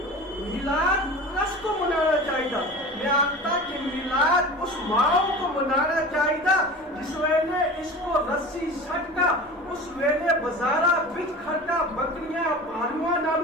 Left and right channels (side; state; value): both; normal; correlation 0.35